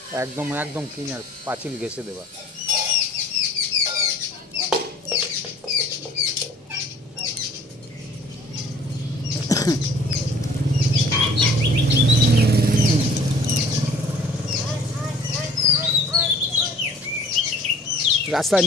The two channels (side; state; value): both; normal; correlation 0.52